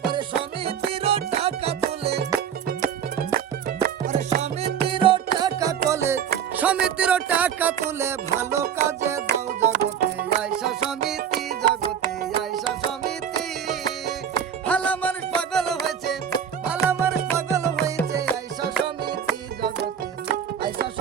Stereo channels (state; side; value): quieter; left; 8.4 dB